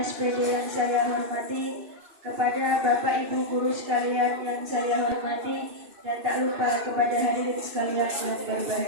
yang saya hormati, kepada Bapak Ibu guru sekalian yang saya hormati, dan tak lupa kepada hadirin sekalian yang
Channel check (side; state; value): left; late; 2.6 ms